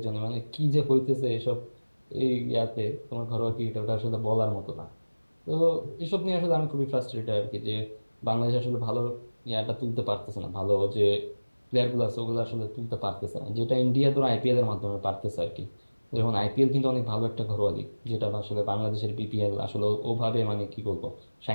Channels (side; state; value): both; inverted; correlation -1.00